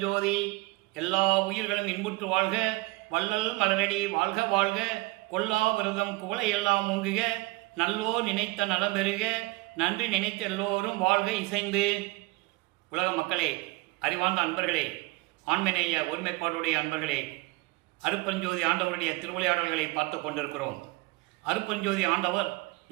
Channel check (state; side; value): quieter; left; 23.4 dB